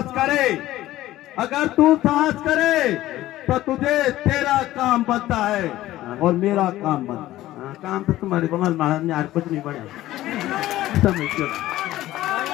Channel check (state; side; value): quieter; right; 15.3 dB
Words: करे, अगर तू साहस करे तो तुझे तेरा काम बनता है और मेरा काम बनता है। काम तो तुम्हारे को महाराज ने आज कुछ नहीं बढ़िया समझ लो,